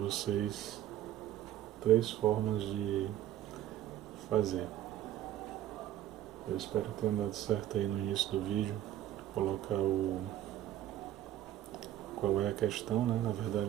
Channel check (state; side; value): quieter; left; 12.5 dB